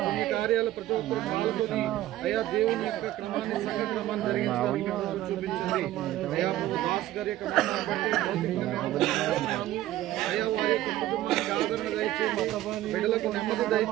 కార్యాలు ప్రతి ఒక్కరు పాల్గొని అయా దేవుని యొక్క క్రమాన్ని సంఘ క్రమాన్ని జరిగించడానికి చూపించండి. అయా దాస్ గారి యొక్క అయా వారి యొక్క కుటుంబానికి ఆదరణ దయచేయండి, బిడ్డలకు నెమ్మది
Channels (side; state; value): left; quieter; 14.3 dB